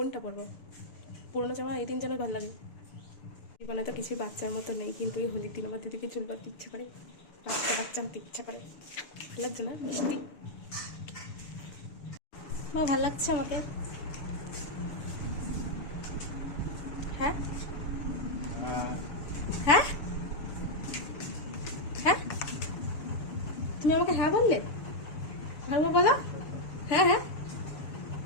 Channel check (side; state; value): right; late; 6.9 ms